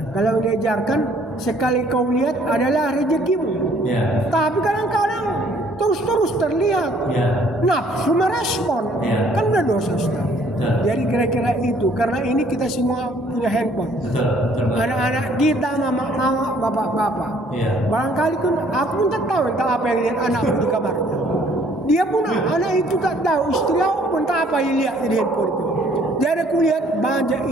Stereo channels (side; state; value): both; normal; correlation 0.60